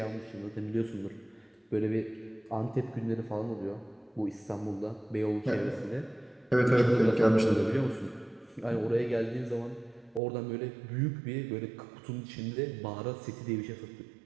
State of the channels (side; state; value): left; drops out; at 10.2 s